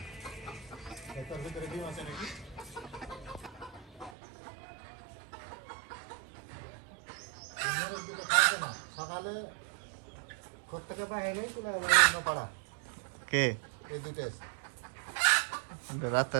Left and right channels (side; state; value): left; drops out; at 4.1 s